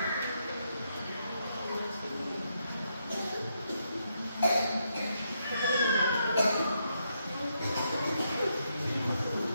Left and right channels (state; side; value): inverted; both; correlation -0.79